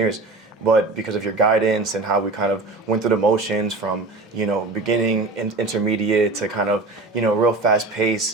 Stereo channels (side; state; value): left; quieter; 3.4 dB